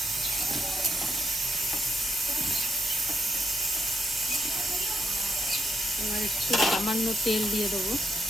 এবার একটু সামান্য তেল দিয়ে দেবো।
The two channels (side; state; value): both; normal; correlation 0.78